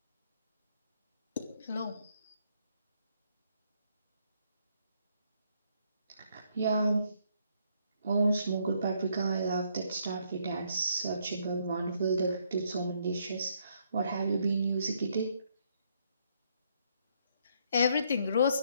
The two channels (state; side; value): inverted; both; correlation -0.71